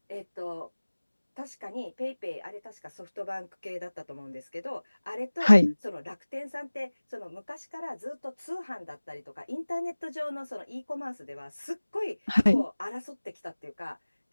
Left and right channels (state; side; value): inverted; both; correlation -1.00